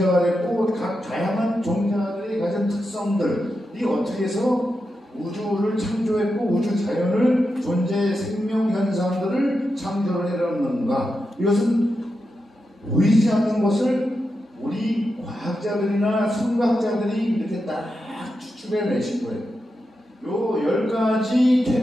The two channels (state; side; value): normal; both; correlation 0.88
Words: 됐고 각 다양한 종자들이 가진 특성들이 어떻게 해서 우주를 창조했고 우주 자연을 존재의 생명 현상들을 창조를 해놨는가? 이것은 보이지 않는 것을 우리 과학자들이나 성각자들이 이렇게 딱 추측해내신 거예요. 요 10가지